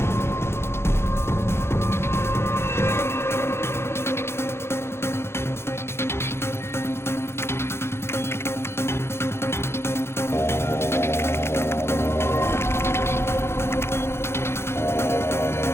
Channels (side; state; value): right; late; 0.12 ms